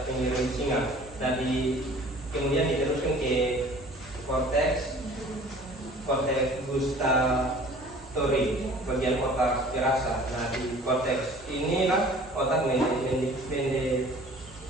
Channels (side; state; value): both; normal; correlation 0.48